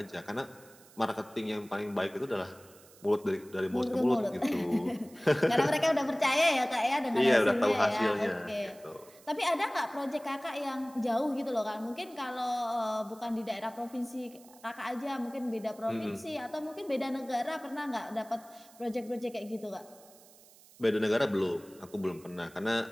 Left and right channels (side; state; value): right; noise; hiss, 24 dB below the sound